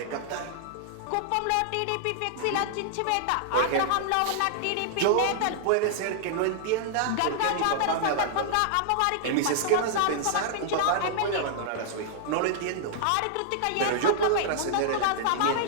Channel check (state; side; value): different; both; correlation -0.01